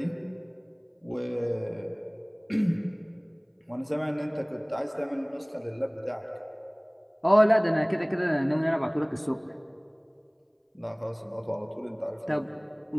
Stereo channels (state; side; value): identical; both; correlation 1.00